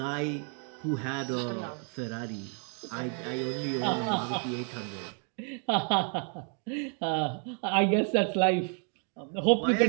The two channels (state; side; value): quieter; left; 39.8 dB